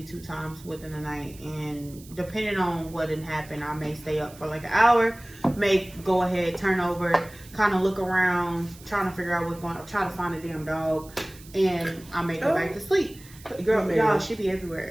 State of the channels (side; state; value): right; noise; hiss, 21 dB below the sound